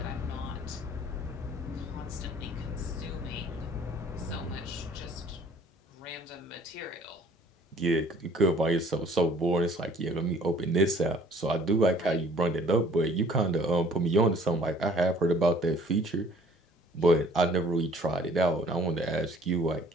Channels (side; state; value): both; normal; correlation 0.54